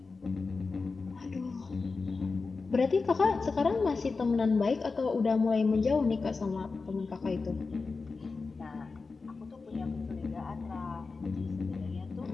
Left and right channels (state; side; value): quieter; right; 4.3 dB